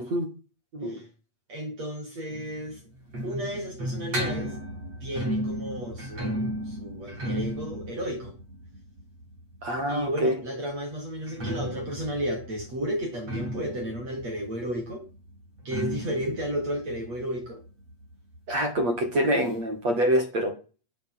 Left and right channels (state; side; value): late; left; 8.4 ms